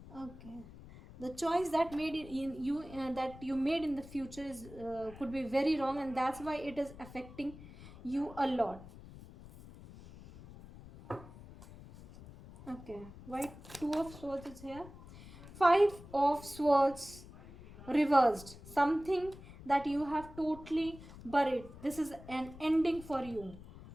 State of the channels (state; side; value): noise; left; rumble, 17 dB below the sound